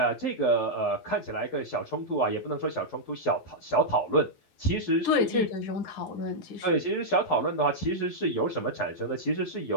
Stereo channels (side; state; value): right; late; 11 ms